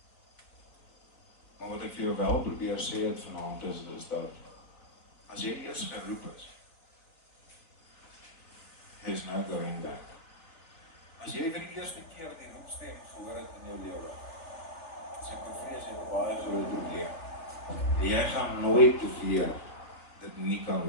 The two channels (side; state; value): right; late; 3.3 ms